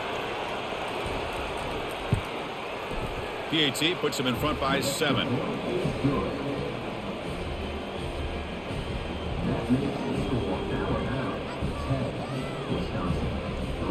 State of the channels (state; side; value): identical; both; correlation 1.00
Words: PAT puts them in front by 7.